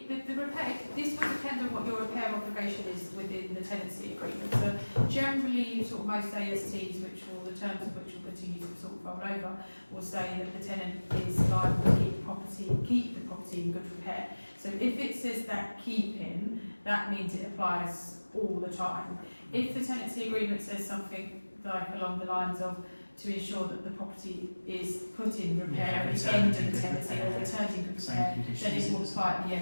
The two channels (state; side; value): inverted; both; correlation -1.00